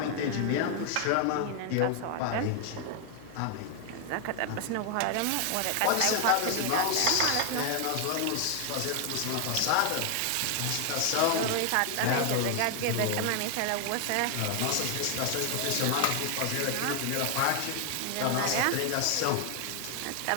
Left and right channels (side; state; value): both; different; correlation 0.00